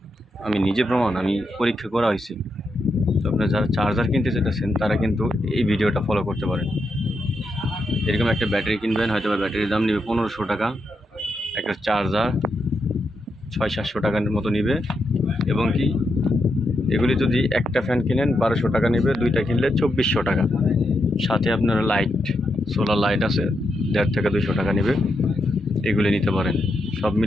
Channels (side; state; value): both; normal; correlation 0.83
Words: আমি নিজে প্রমাণ, আমি পরীক্ষা করা হয়েছে। তো আপনারা যারা চার্জার কিনতে চাইতেছেন তারা কিন্তু এই ভিডিওটা ফলো করতে পারেন। এরকম একটা ব্যাটারি কিনবেন, হয়তো বা ব্যাটারির দাম নেবে 1500 টাকা, একটা চার্জার 600-700 টাকার মতো নেবে, এবং কি এগুলি যদি একটা ফ্যান কিনেন 1200 টাকা নেবে, 2টা কিনলে 2400 টাকা। সাথে আপনার লাইট, সোলার লাইট আছে, 150 থেকে 200 টাকা নেবে। এগুলি নিতে পারেন। সব